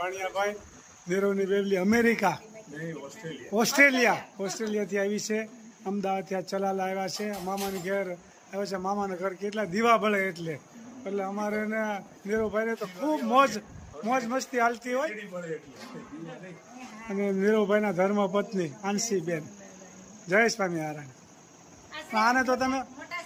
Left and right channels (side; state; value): both; identical; correlation 1.00